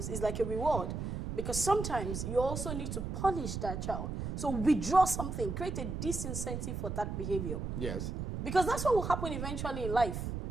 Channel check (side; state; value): right; noise; rumble, 4 dB below the sound